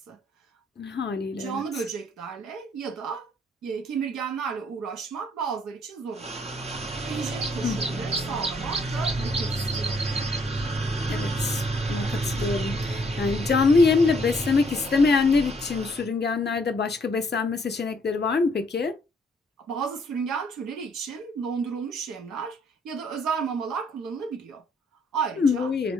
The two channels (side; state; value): both; normal; correlation 0.67